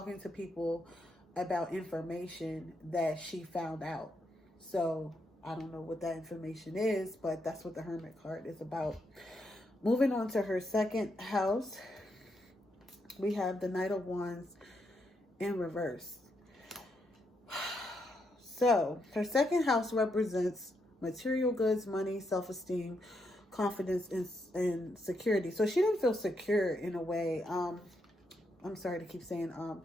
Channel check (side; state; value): both; normal; correlation 0.80